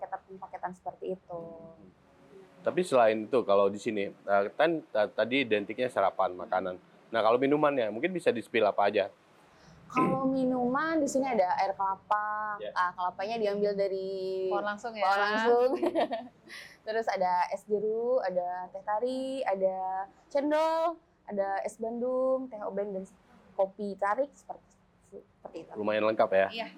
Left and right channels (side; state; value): both; identical; correlation 1.00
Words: paketan seperti itu. Tapi selain itu kalau di sini kan tadi identiknya sarapan, makanan. Nah, kalau minumannya mungkin bisa di-spill apa aja? Kalau minuman di sini ada air kelapa. Kelapanya diambil dari Pohon langsung ya. pohon langsung. Terus ada es jeruk, ada teh tarik, ada cendol, ada es bandung, teh oben, dan kopi tarik seperti itu. Lumayan lengkap ya? Iya.